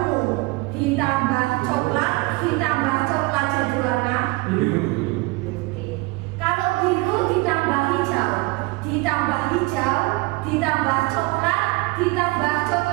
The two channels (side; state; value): left; quieter; 23.8 dB